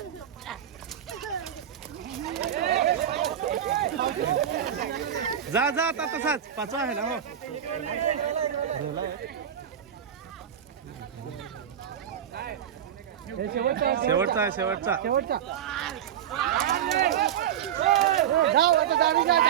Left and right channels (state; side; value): quieter; left; 9.7 dB